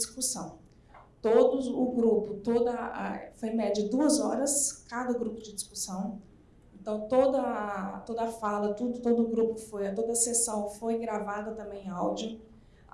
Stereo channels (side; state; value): both; identical; correlation 1.00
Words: Foi em média 2 horas, cada grupo de discussão. Então, toda a fala, todo o grupo toda a sessão foi gravada também em áudio.